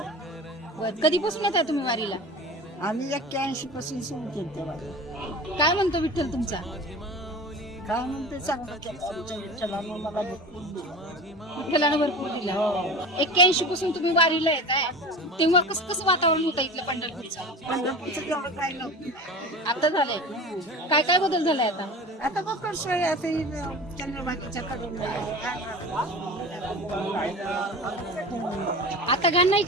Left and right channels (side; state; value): both; normal; correlation 0.34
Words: कधीपासून येत आहे तुम्ही वारीला? आम्ही 81 पासून सुरू केलं तेव्हा. काय म्हणतो विठ्ठल तुमचा? काय म्हणते चांगलं केलं आमच्या विठ्ठलानं मला भरपूर दिलं. विठ्ठलानं भरपूर दिला. 81 पासून तुम्ही वारीला येत आहे, तेव्हा कसं वातावरण होतं इथलं पंढरपूरचं? पंढरपूरचं तेवढं काय नव्हतं. आता झालंय. काय काय बदल झालाय आता? आता बघ कसं आहे, आता चंद्रभागेच्या कडून आता घाण नाही